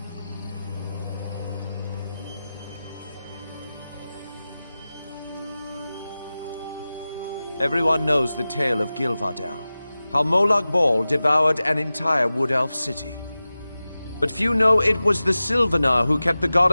Everyone knows the tale of Gilvardel, how Molag Bal devoured an entire wood elf city. But few know it was the Sylvanar who kept the god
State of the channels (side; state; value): both; inverted; correlation -0.96